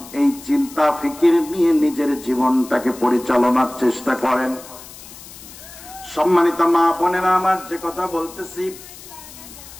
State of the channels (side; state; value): left; noise; hiss, 17 dB below the sound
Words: এই চিন্তা ফিকির নিয়ে নিজের জীবনটাকে পরিচালনার চেষ্টা করেন। সম্মানিত মা বোনেরা, আমার যে কথা বলতেছি